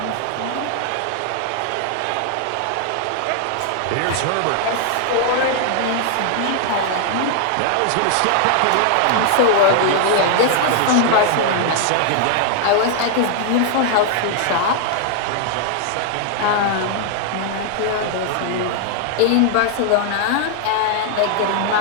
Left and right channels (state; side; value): different; both; correlation 0.00